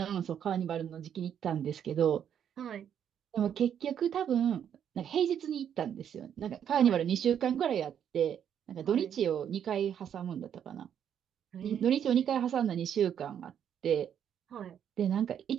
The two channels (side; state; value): left; quieter; 9.0 dB